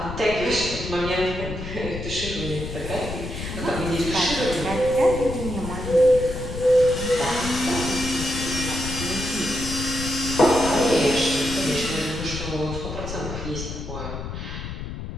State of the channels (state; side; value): noise; left; rumble, 7 dB below the sound